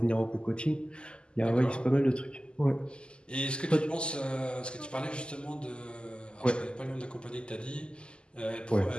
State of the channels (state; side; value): late; right; 0.050 ms